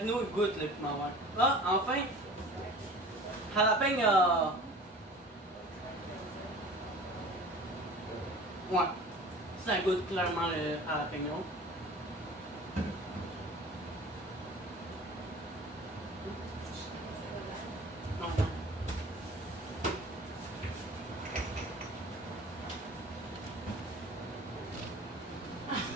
il goûte le piment vert. Ah, enfin, jalapeno. Ouais, ça goûte clairement le jalapeno. Non.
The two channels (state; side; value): normal; both; correlation 0.42